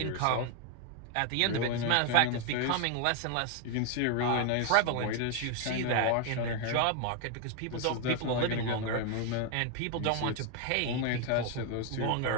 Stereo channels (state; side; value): different; both; correlation 0.01